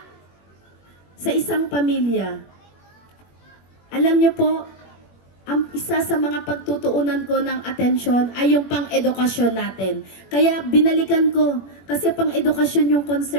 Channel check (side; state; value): right; late; 21 ms